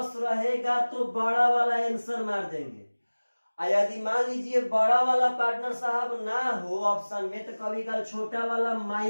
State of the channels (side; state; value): both; inverted; correlation -1.00